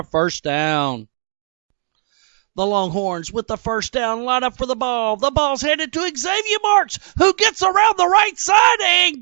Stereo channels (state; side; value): silent; left; digital silence